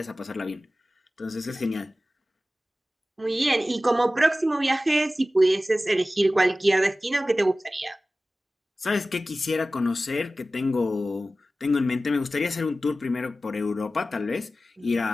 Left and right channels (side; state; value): both; normal; correlation 0.95